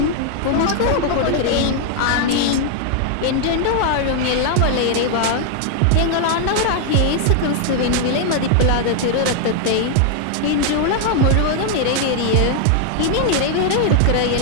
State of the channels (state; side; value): different; both; correlation 0.00